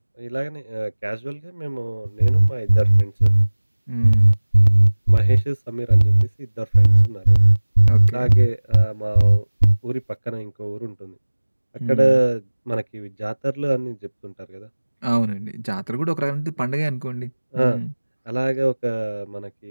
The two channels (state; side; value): inverted; both; correlation -1.00